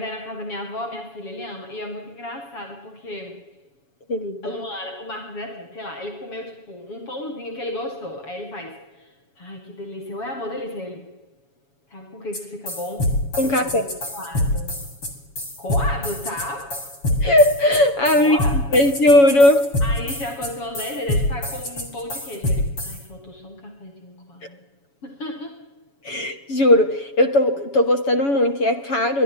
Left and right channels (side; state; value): right; late; 7.2 ms